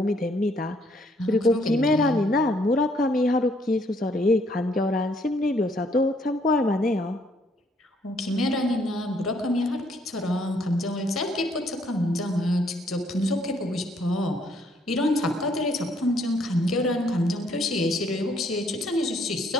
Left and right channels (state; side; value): normal; both; correlation 0.67